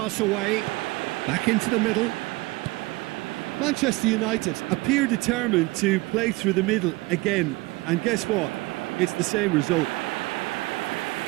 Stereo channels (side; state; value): left; quieter; 22.5 dB